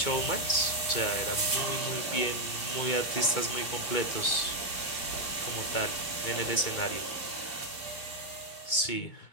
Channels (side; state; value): right; late; 2.2 ms